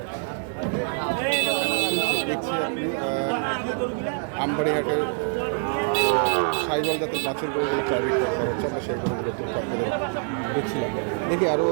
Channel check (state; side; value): silent; left; 56 dB below the other